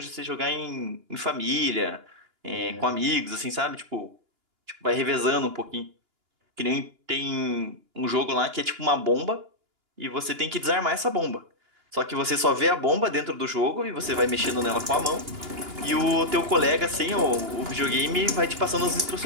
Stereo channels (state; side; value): late; left; 2.9 ms